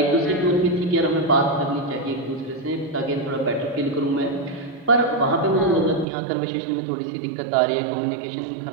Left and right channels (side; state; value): left; drops out; at 6.1 s